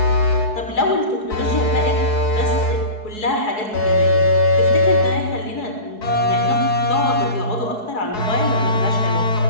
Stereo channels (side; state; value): right; late; 4.7 ms